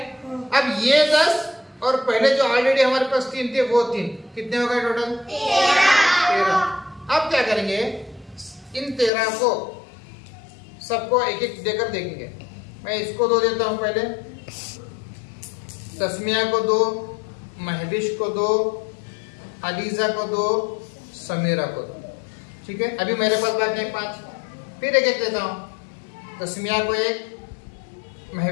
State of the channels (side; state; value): right; drops out; at 9.1 s